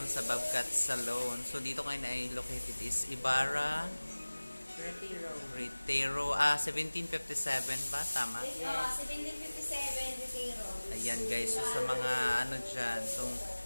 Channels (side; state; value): both; inverted; correlation -1.00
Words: sa Bobcat Salon. So, dito ngayon ay located is Ibarra Retiro. 1757 ba? Tama? Yes. 1757 Retiro. Ayan guys. So, sa mga dyan. So,